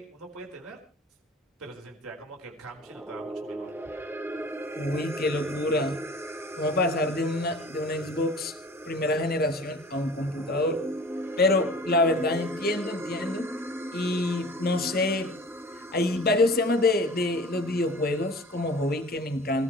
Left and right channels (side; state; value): both; normal; correlation 0.43